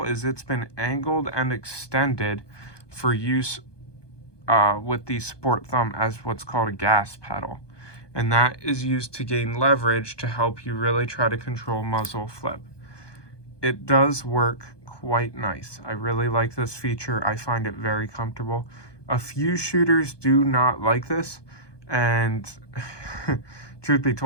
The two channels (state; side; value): late; right; 1.2 ms